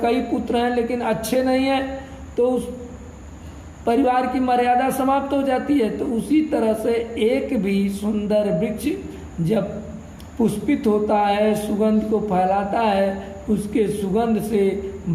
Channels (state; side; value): identical; both; correlation 1.00